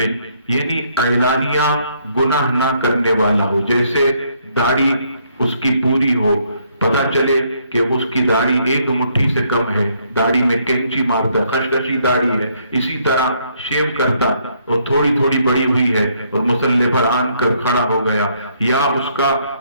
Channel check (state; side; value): inverted; both; correlation -0.70